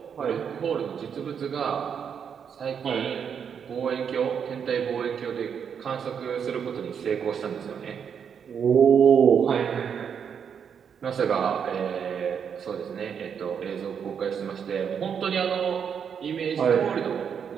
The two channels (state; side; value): quieter; left; 7.4 dB